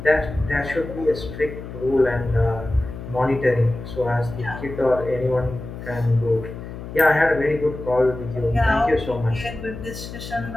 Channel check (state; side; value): noise; left; hum, 11 dB below the sound